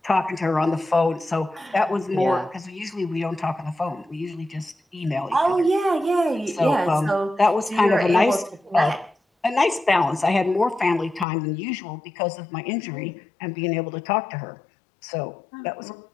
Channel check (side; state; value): right; drops out; at 11.2 s